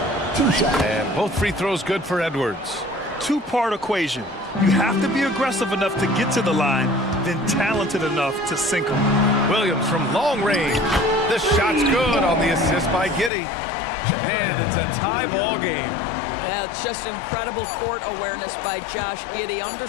2 shots. And both free throws good for Edwards. Two-part equation. You have to be aggressive enough to get to the line, then talented enough to sink them. Williams from long range. The shot's good on the assist by Giddy. And it's a tie ball game. Yeah, it's just incredible court awareness by Josh Giddy.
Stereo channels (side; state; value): right; drops out; at 13.3 s